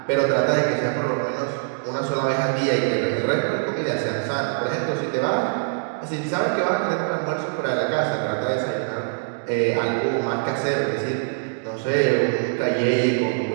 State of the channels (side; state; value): left; silent; digital silence